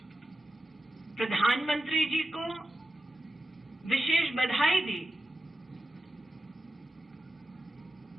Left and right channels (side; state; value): both; normal; correlation 0.91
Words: प्रधानमंत्री जी को विशेष बधाई दी